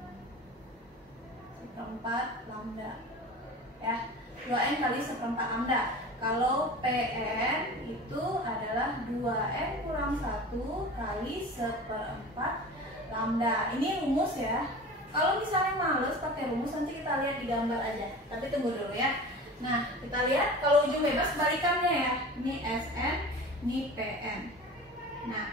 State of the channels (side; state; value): both; normal; correlation 0.36